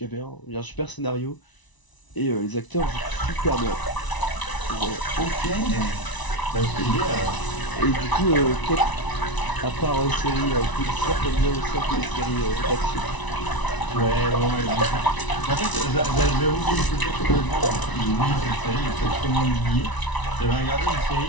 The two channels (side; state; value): right; late; 1.0 ms